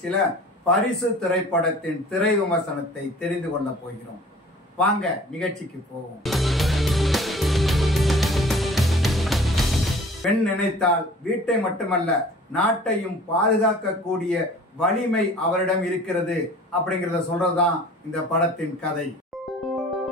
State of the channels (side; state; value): both; normal; correlation 0.47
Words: பரிசு திரைப்படத்தின் திரை விமர்சனத்தை தெரிந்து கொள்ள போகிறோம். வாங்க நிகழ்ச்சிக்கு போவோம். பெண் நினைத்தால் வீட்டை மட்டுமல்ல நாட்டையும் பாதுகாக்கக்கூடிய வலிமை அவரிடம் இருக்கிறது அப்படிங்கறத சொல்றதுதான் இந்த படத்தின் கதை.